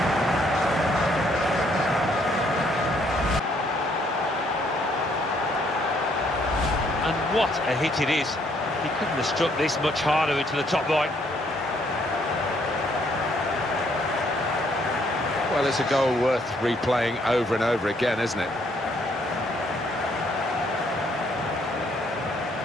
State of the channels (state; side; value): normal; both; correlation 0.68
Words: And what a hit it is. He couldn't have struck this much harder into the top right. Well, it's a goal worth replaying over and over again, isn't it?